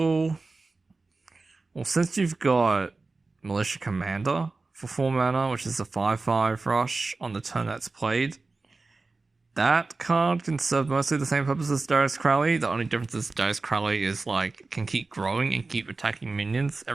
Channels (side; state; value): left; quieter; 3.7 dB